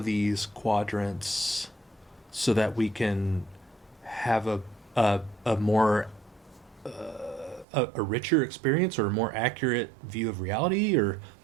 these quadrants so that we can have a more a richer experience or a more accurate view of reality, or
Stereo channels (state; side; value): drops out; left; at 7.7 s